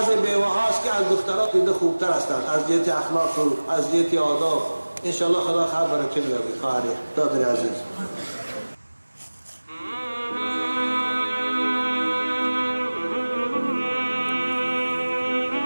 بیوه هاست که از دخترات دیده خوبتر هستند از جهت اخلاق و از جهت آداب. انشاءالله خدا خیر برکت بیاره. خواهری دادر عزیز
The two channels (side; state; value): both; inverted; correlation -1.00